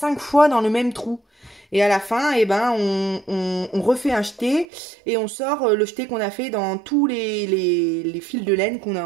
fois dans le même trou. Et à la fin, eh ben, on refait un jeté, et on sort le jeté qu'on a fait dans tous les fils de laine qu'on a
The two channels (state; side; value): drops out; left; at 4.7 s